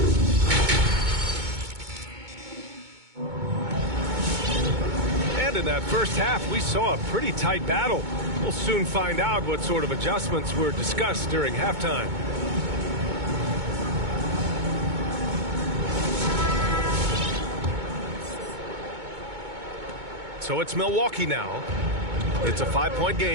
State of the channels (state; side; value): late; left; 2.2 ms